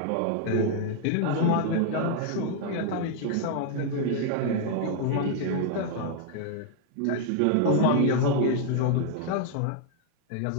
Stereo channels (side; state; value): both; different; correlation 0.00